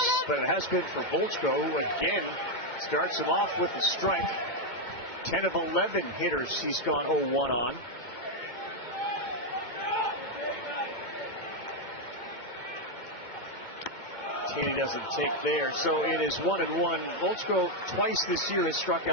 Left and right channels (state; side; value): late; left; 2.2 ms